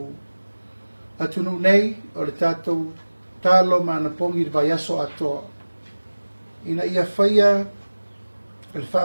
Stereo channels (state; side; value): inverted; both; correlation -1.00